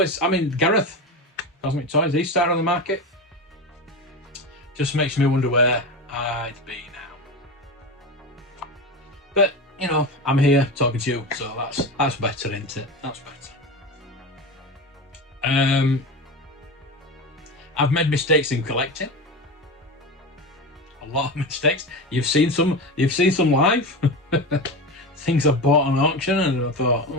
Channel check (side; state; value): both; normal; correlation 0.24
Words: I mean, Gareth, Cosmic Toys, he started on the market. Just makes me wonder where I'd be now. But you know, I'm here talking to you, so that's better, isn't it? That's better. I've made mistakes in collecting. A lot of mistakes. You've seen some live. Things I bought on auction, and I thought,